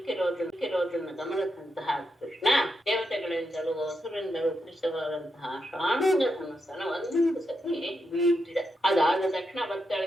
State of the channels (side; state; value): both; normal; correlation 0.84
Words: ಗಮನಿಸಿದಂತಹ ಕೃಷ್ಣ ದೇವತೆಗಳಿಂದಲೂ ಹಸುರಿಂದಲೂ ಕೃಷ್ಣವಾದಂತಹ ಶಾಣುಂಗ ಧನುಸ್ಸನ್ನು ಒಂದು ಸತಿ ಬೀಳ್ತಿದೆ. ಅದಾದ ತಕ್ಷಣ